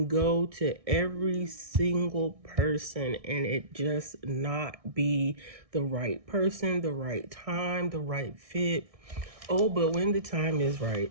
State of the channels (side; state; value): left; late; 1.6 ms